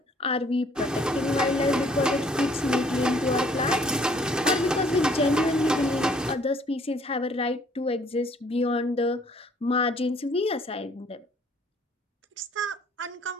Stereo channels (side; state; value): both; normal; correlation 0.60